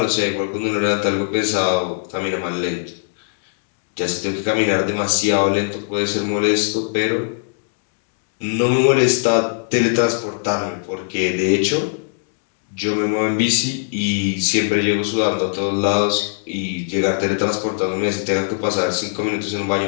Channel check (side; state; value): right; silent; digital silence